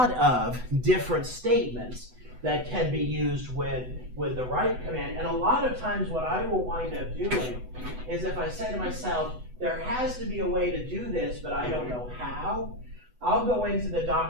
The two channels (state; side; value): late; left; 8.0 ms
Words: of different statements that can be used with the write command. And a lot of times what I will wind up doing is if I say to myself, there has to be a way to do this, but I don't know how, I'll go into the